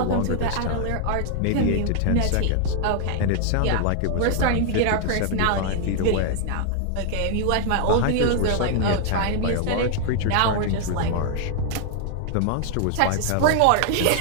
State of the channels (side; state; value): both; different; correlation 0.00